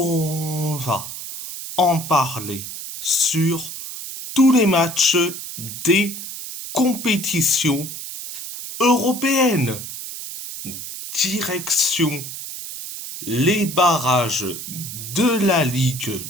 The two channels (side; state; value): right; noise; hiss, 9 dB below the sound